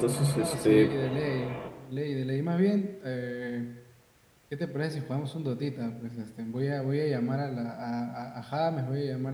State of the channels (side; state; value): both; identical; correlation 1.00